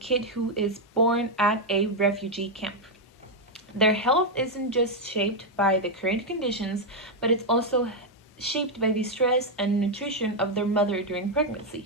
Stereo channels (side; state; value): both; normal; correlation 0.01